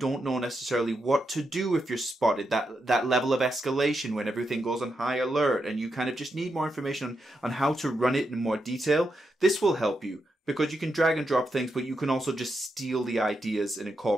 know necessarily what to do if you're spotted, that level of escalation when everything goes on high alert, and you kind of just need more information on how to run it in more detail, this will help you. Because you can drag and drop things, but you can also just steal the ideas and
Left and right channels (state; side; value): normal; both; correlation 0.84